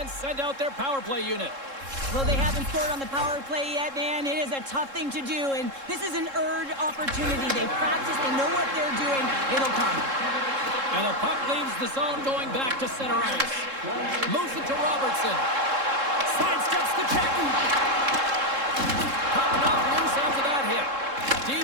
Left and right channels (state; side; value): late; left; 3.7 ms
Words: send out their power play unit. Well, they haven't scored on the power play yet, man. It is a tough thing to do, and this is an earned opportunity. They practice, they know what they're doing. It'll come. And the puck leaves the zone going back to center ice. Moves it to Robertson. Sidesteps the check. Puck knocked loose after that hit.